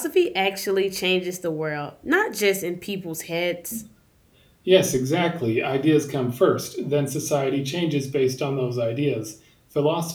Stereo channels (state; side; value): identical; both; correlation 1.00